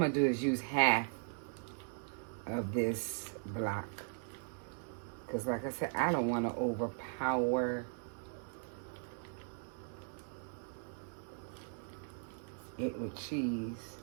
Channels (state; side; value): silent; left; 52 dB below the other